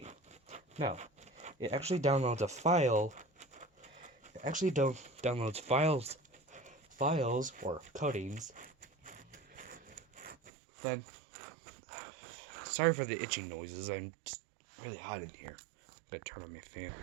No, it actually downloads a file. It actually downloads files or codings. Then, sorry for the itching noises. I'm just really hot in here. I'm gonna turn on my fan.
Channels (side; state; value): left; drops out; at 10.5 s